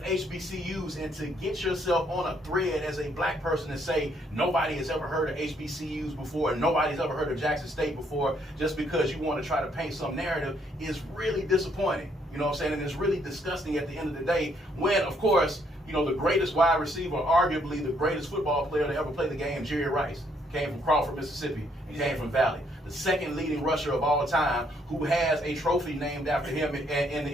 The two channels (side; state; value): both; normal; correlation 0.70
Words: HBCUs. And to get yourself on a thread as a black person and say nobody has ever heard of HBCUs before and nobody's ever heard of Jackson State before just because you want to try to paint some narrative is really disappointing. You know what I'm saying? And it's really disgusting at the end of the day when, of course, you know, the greatest wide receiver, arguably the greatest football player to ever play the game, Jerry Rice, came from Crawford, Mississippi, and came from Valley. The second leading rusher of all time who has a trophy named after him in the